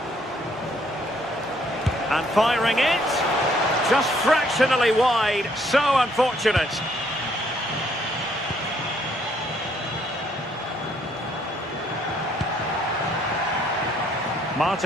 And firing it. Just fractionally wide. So unfortunate.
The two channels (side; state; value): both; normal; correlation 0.67